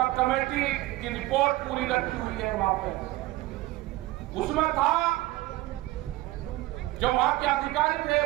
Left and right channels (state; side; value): quieter; left; 18.1 dB